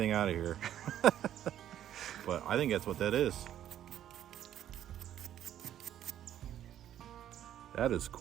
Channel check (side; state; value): left; quieter; 11.2 dB